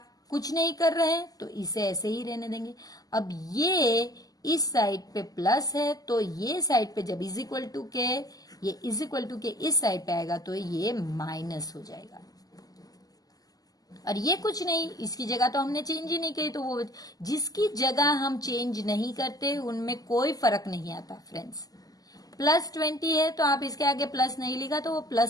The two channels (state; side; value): late; right; 0.18 ms